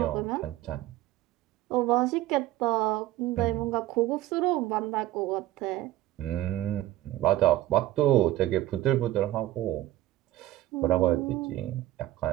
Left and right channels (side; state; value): left; quieter; 15.3 dB